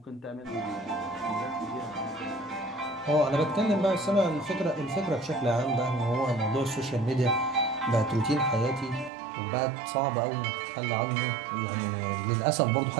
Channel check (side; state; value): left; drops out; at 9.1 s